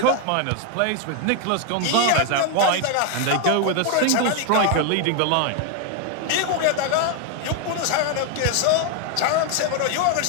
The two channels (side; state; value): both; different; correlation 0.01